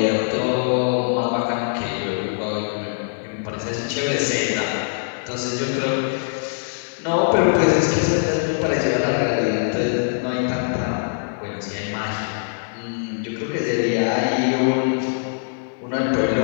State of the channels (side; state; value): right; silent; digital silence